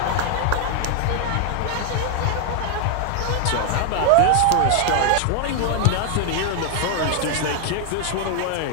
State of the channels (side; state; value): both; different; correlation 0.00